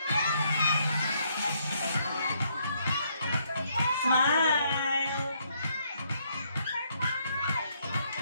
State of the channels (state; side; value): inverted; both; correlation -0.72